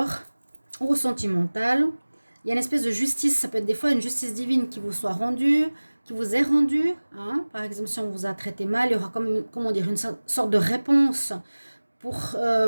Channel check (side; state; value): both; inverted; correlation -1.00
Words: au sentimental. Il y a une espèce de justice, ça peut être des fois une justice divine qui vous soit rendue, qui vous est rendue. Par exemple, si on vous a traité mal, il y aura comment dire, une sorte de réponse pour